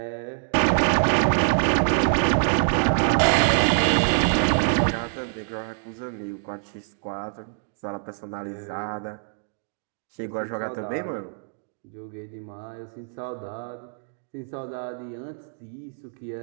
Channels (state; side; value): silent; left; digital silence